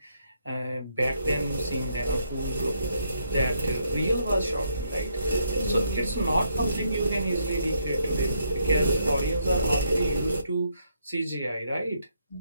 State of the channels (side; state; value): both; inverted; correlation -0.74